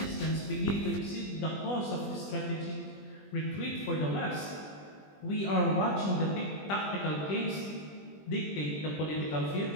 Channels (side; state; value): right; late; 20 ms